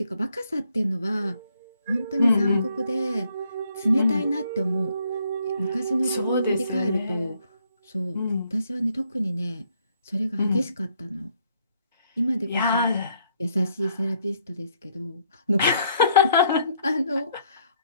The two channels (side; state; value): both; inverted; correlation -0.69